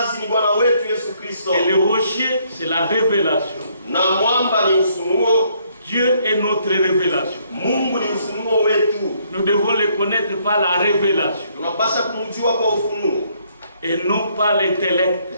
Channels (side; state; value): both; inverted; correlation -0.68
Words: ni Bwana wetu Yesu Kristo. Et le rocher c'est la révélation. Na mwamba ni ufunuo. Dieu est notre révélation. Mungu ni ufunuo wetu. Nous devons le connaître par la révélation. Tunapaswa kumjua kwa ufunuo. Et non par